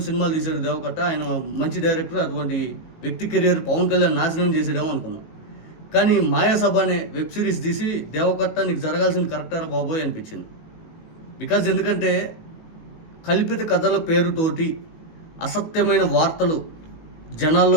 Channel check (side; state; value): right; late; 19 ms